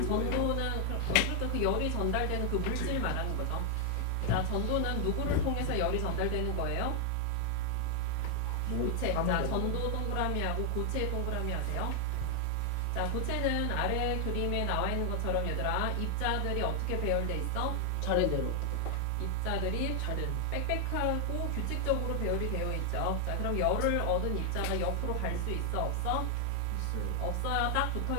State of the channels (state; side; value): different; both; correlation 0.00